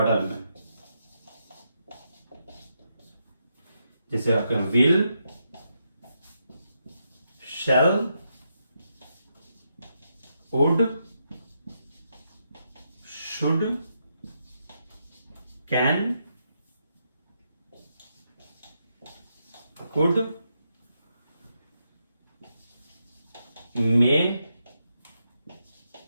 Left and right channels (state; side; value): inverted; both; correlation -0.82